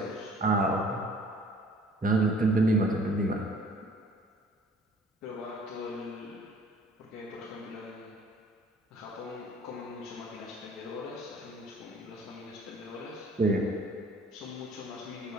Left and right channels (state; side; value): normal; both; correlation 0.53